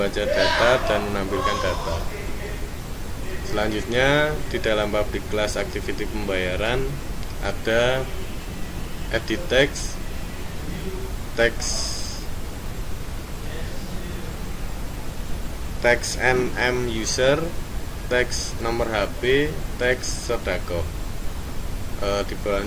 data, dan menampilkan data. Selanjutnya di dalam public class activity pembayaran ada edit text, text nm user, text nomor HP, text sodako. Di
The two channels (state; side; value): identical; both; correlation 1.00